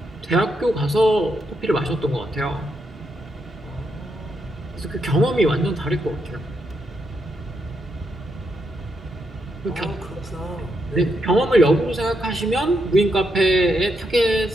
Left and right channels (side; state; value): both; normal; correlation 0.81